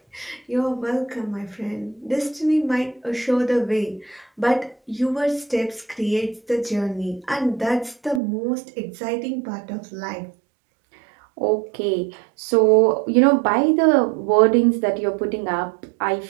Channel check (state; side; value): drops out; left; at 8.2 s